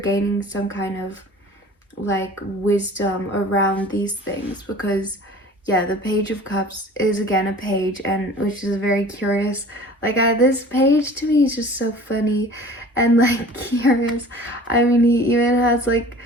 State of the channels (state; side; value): normal; both; correlation 0.44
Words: some kind of like wisdom around these things, because the Page of Cups is again a page, and which is very curious. Like this page to me is just so funny and like curious. I mean, he even has like,